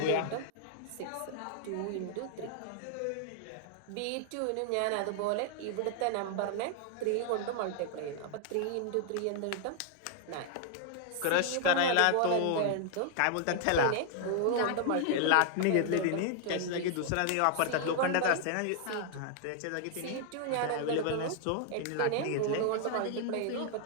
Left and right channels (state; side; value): different; both; correlation 0.00